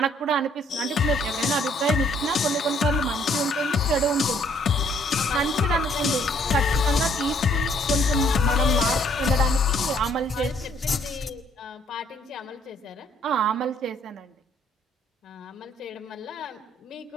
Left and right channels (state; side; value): normal; both; correlation 0.65